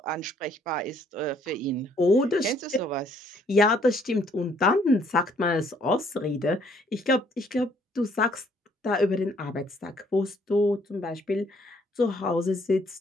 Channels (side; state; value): both; normal; correlation 0.64